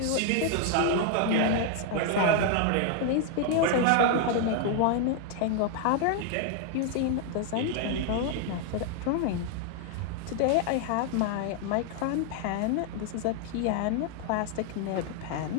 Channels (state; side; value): different; both; correlation 0.00